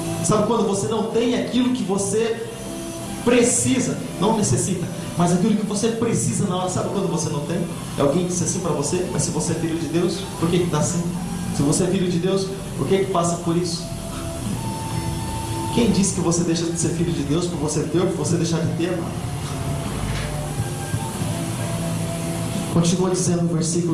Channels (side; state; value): both; identical; correlation 1.00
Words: Sabe quando você não tem aquilo que você precisa, não necessita, mas aquilo que você precisa na hora? Sabe quando você não tem? É alguém que disse assim para você: mas se você é filho de Deus, por que está assim? Se você é filho de Deus, por que passa por isso? Quem disse que você deixa de ser filho de Deus por você ter ou por você deixar de ter, mano? Continua dizendo no